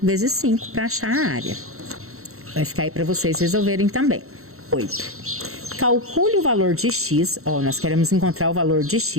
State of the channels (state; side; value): late; left; 0.63 ms